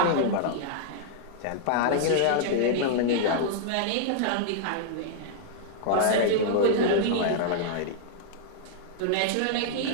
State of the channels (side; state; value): both; different; correlation -0.01